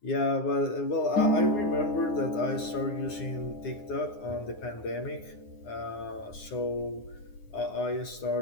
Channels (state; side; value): late; right; 9.6 ms